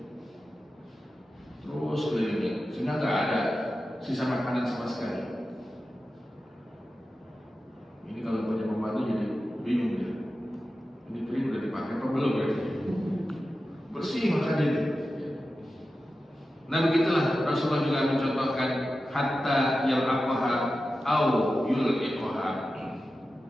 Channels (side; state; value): both; normal; correlation 0.93